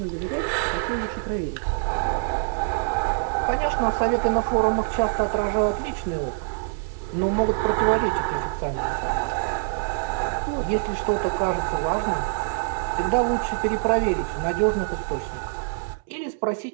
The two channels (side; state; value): left; silent; 62 dB below the other